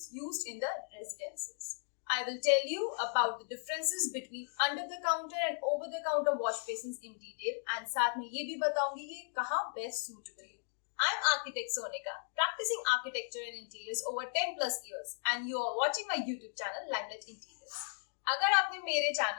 used in the residences. I will tell you about the differences between under the counter and over the counter wash basins in detail and साथ में ये भी बताऊंगी कि कहाँ best suitable है। I am architect Sonika, practicing architecture and interiors over 10 plus years and you are watching my YouTube channel Limelight Interiors. अगर आपने मेरे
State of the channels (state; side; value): silent; right; digital silence